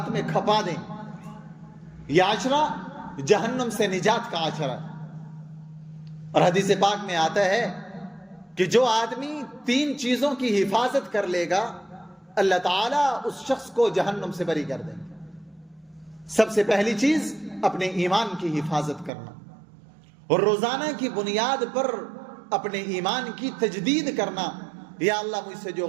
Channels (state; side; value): drops out; left; at 19.1 s